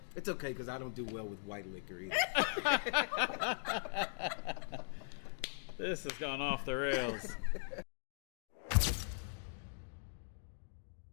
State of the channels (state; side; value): silent; right; digital silence